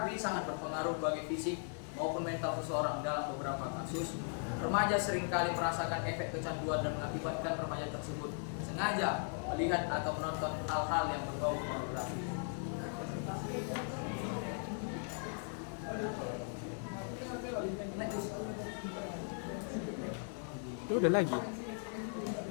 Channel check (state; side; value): silent; right; 52 dB below the other